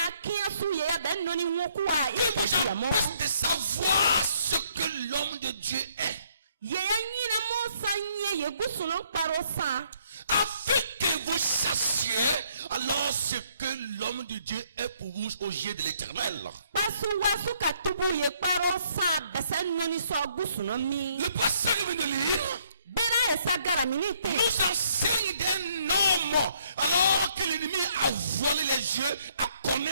kiasu ye ya ben noni nwokuwa Qui vous ikajamo empêche de savoir ce que l'homme de Dieu est. ye ya nyina mo sanye ye gusuno parosa Afin que vous sachiez alors ce que l'homme de Dieu est pour vous aux yeux de l'Éternel. pasu wasu katubu ye parosa besen noni so gusuno mi Le pasteur qui vient de lire bera esagara minite nous enseigne d'un homme alors que l'ennemi a voilé les yeux à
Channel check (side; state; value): both; inverted; correlation -0.67